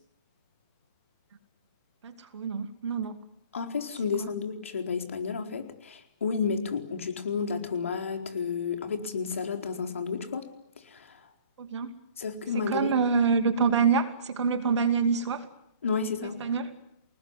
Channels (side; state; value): both; inverted; correlation -0.50